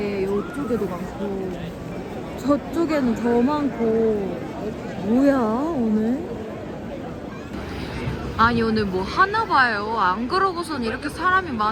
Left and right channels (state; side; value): identical; both; correlation 1.00